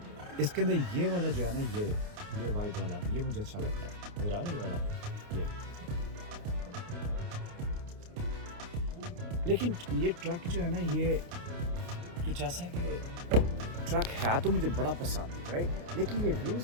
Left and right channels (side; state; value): left; late; 29 ms